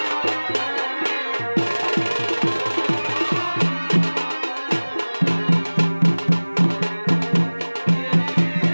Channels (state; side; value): inverted; both; correlation -1.00